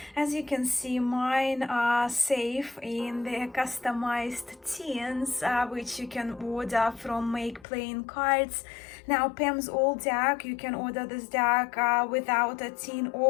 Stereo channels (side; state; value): right; drops out; at 7.7 s